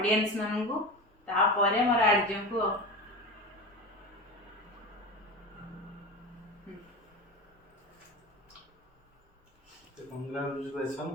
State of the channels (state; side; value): normal; both; correlation 0.27